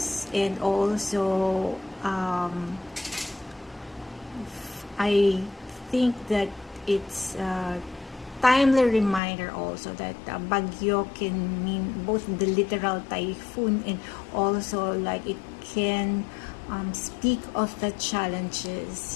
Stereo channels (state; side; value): drops out; right; at 9.2 s